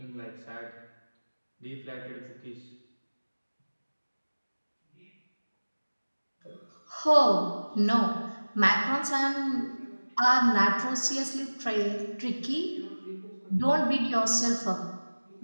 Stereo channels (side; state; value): both; inverted; correlation -1.00